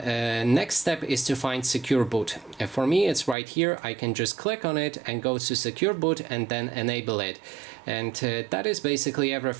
next step is to find secure boot. For me, it's right here. I can just click on it and go to secure boot and then enable it. And that is basically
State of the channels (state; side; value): drops out; left; at 3.4 s